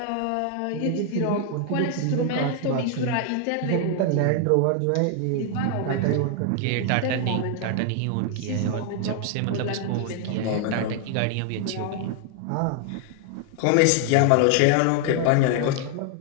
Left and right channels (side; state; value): both; different; correlation 0.00